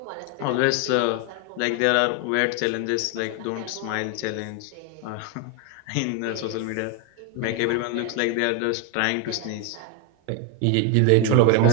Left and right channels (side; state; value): both; different; correlation 0.01